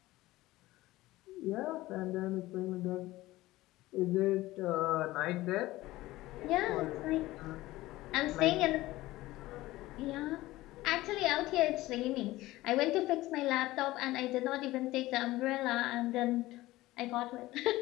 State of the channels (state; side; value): quieter; right; 17.7 dB